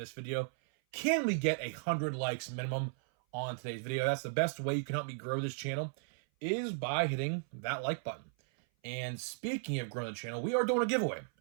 video. Can we get 100 likes minimum on today's video? That's the best way you can help me grow this channel, is by hitting that like button. And speaking of growing the channel, we are doing a giveaway.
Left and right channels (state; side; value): silent; left; 54 dB below the other